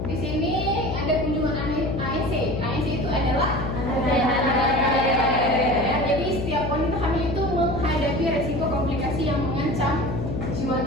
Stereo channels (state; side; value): noise; left; hum, 3 dB below the sound